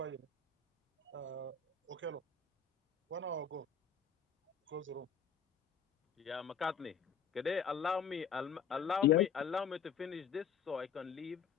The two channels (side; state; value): right; quieter; 6.8 dB